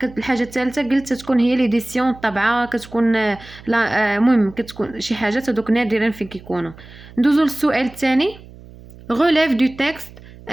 الحاجه الثالثه قلت تكون هي ليديسيون الطبعه، كتكون لا المهم كتكون شي حاجات هذوك نادرا فين كيكونوا. ندوزو للسؤال الثاني. relève du texte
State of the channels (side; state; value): right; noise; hum, 20 dB below the sound